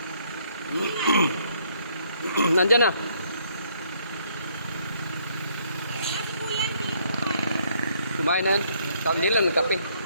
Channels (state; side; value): inverted; both; correlation -0.68